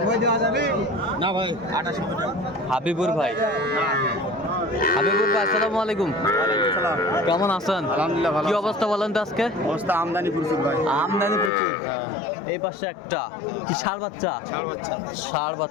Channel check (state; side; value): drops out; right; at 11.5 s